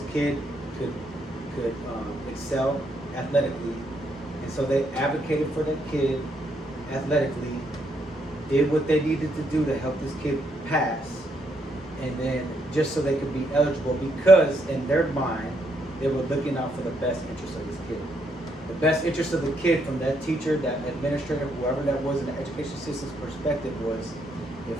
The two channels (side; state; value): both; normal; correlation 0.75